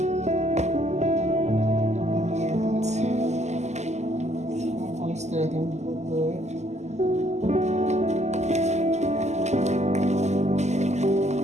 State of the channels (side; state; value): left; late; 0.33 ms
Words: And I'm going to stir them real good.